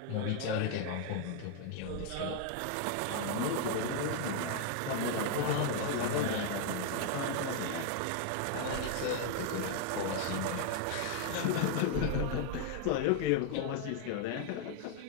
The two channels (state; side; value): different; both; correlation 0.00